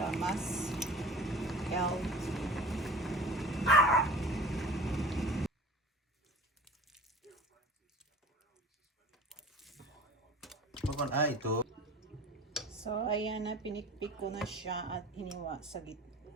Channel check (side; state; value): both; normal; correlation 0.40